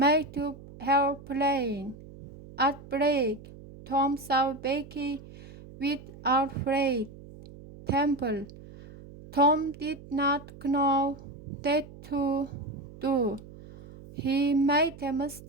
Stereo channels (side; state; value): right; noise; hum, 18 dB below the sound